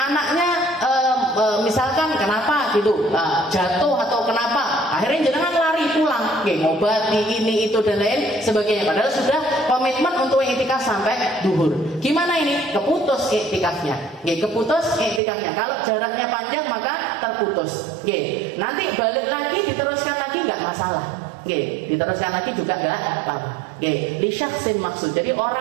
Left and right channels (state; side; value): drops out; left; at 15.2 s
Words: misalkan kenapa gitu, jatuh atau kenapa?" Akhirnya jangan lari pulang, ngobati ini itu dan lain sebagainya. Padahal sudah komitmen untuk iktikaf sampai duhur. Gimana ini? Keputus iktikafnya. Keputus iktikafnya. Kalau jaraknya panjang maka terputus. Nanti balik lagi diteruskan lagi nggak masalah. Diteruskan lagi juga nggak apa-apa. Li syakhsin maksud. Jadi